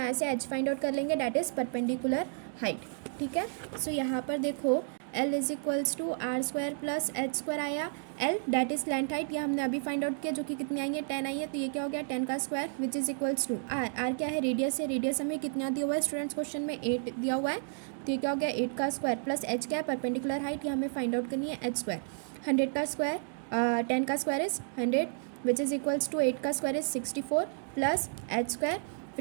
से एच फाइंड आउट कर लेंगे, डैट इज़ परपेंडिकुलर हाइट। ठीक है, सो यहाँ पर देखो L is equals to R square plus H square आया, L that is slant height, ये हमने अभी फाइंड आउट किया जो कि कितनी आई है 10 आई है, तो ये क्या हो गया 10 का square, which is equals to R, R क्या है रेडियस है, रेडियस हमें कितना दिया हुआ है स्टूडेंट्स क्वेश्चन में 8 दिया हुआ है, तो ये क्या हो गया 8 का स्क्वायर प्लस एच क्या है परपेंडिकुलर हाइट, ये हमें फाइंड आउट करनी है एच स्क्वायर, 100 का स्क्वायर 10 का square is 100 which is equals to 8 का square is 64 plus H square,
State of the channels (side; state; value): left; silent; digital silence